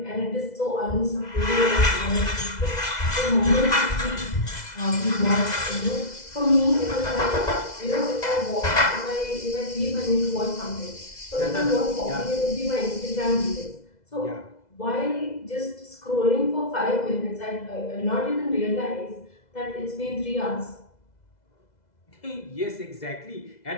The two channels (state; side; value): late; right; 2.0 ms